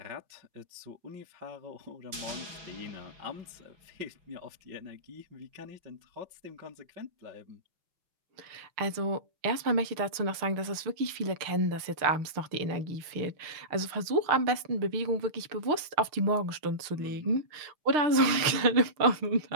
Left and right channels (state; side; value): late; left; 6.5 ms